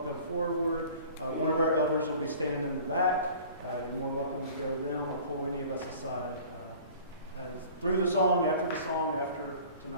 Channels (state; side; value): inverted; both; correlation -0.46